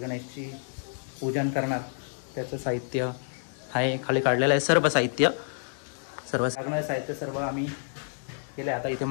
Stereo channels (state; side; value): silent; right; digital silence